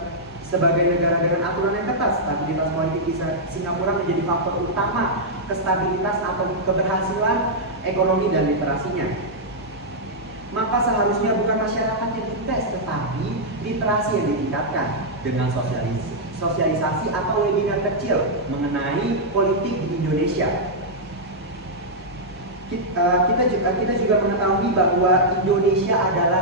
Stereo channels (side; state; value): both; normal; correlation -0.07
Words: sebagai negara dengan aturan yang ketat, stabilitas politik di Singapura menjadi faktor utama kestabilitas atau keberhasilan ekonomi dan literasinya. Maka seharusnya bukan masyarakat yang dites, tetapi literasi yang ditingkatkan dengan sosialisasi atau webinar kecil mengenai politik di Indonesia. Kita juga mengetahui bahwa Indonesia adalah